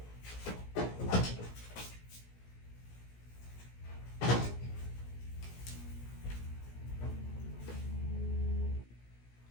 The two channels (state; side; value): late; right; 17 ms